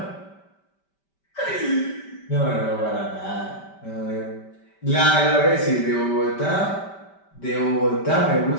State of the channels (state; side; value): late; right; 5.1 ms